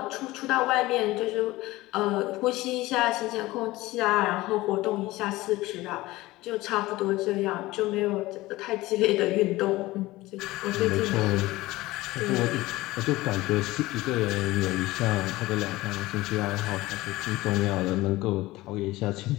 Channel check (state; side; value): quieter; right; 18.9 dB